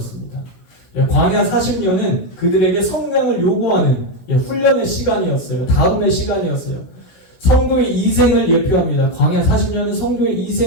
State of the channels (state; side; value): late; right; 16 ms